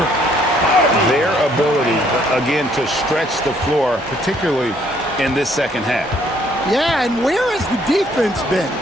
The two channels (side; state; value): both; normal; correlation 0.65